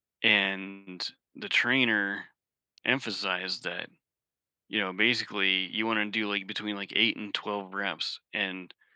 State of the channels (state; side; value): identical; both; correlation 1.00